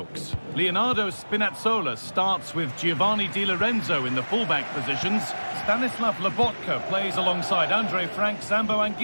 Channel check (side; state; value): both; inverted; correlation -1.00